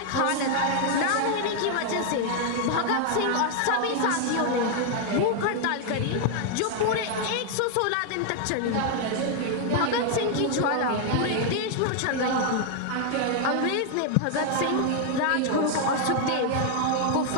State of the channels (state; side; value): different; both; correlation 0.00